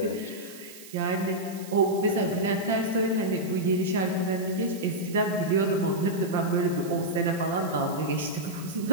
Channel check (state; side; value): noise; right; hiss, 17 dB below the sound